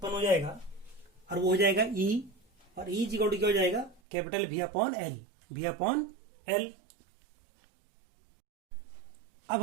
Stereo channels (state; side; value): drops out; left; at 4.0 s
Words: हो जाएगा और वो हो जाएगा E। और E इक्वल टू क्या हो जाएगा, capital V upon L, V upon L। अब